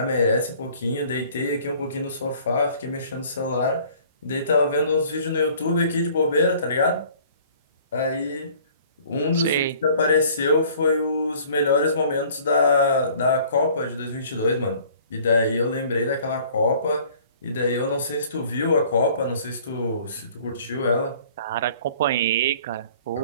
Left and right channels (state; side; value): inverted; both; correlation -0.53